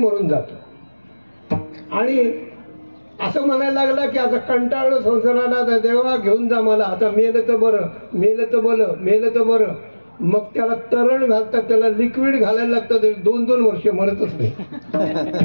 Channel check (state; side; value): inverted; both; correlation -1.00